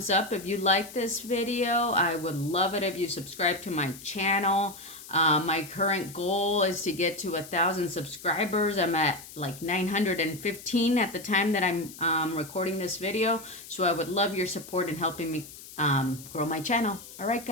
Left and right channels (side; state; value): left; noise; hiss, 16 dB below the sound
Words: up if you like this video. I would love it if you subscribe to my channel. My current goal is to get to 1,000 subscribers. I'm at like 915 at the time that I'm recording this video. So I would love your support in helping me grow my channel. All right,